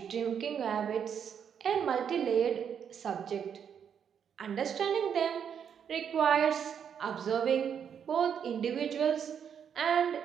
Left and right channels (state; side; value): quieter; left; 7.9 dB